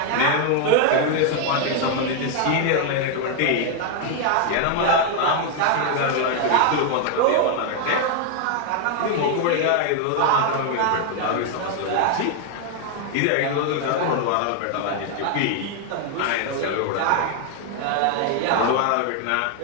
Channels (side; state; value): both; different; correlation 0.00